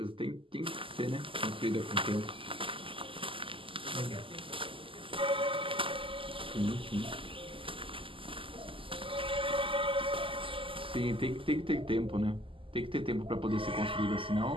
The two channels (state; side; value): late; left; 0.25 ms